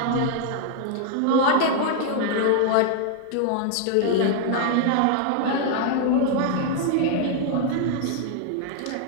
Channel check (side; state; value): both; different; correlation 0.00